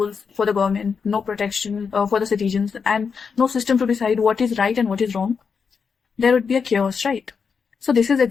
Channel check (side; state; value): right; quieter; 5.8 dB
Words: for the government, no protection for the citizens, and no system to decide what is right and what is wrong? There would be a chaos, right? So this is